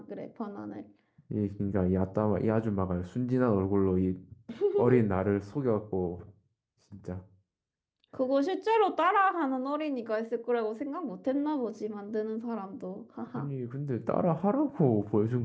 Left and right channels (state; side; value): identical; both; correlation 1.00